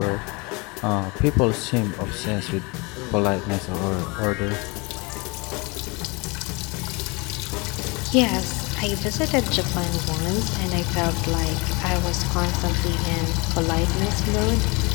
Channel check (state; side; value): quieter; right; 27.7 dB